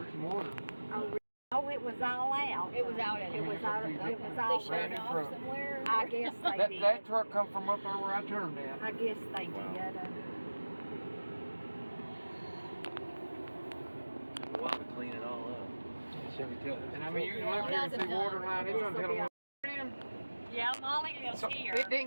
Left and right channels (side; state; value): both; inverted; correlation -1.00